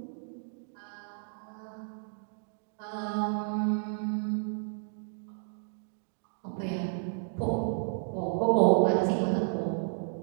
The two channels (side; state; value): left; silent; digital silence